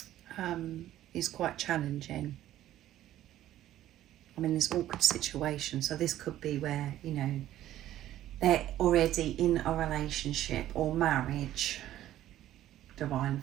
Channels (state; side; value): quieter; left; 13.2 dB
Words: is quite challenging. I'm in this awkward situation, so this could be where, you know, they're already in a relationship or marriage, divine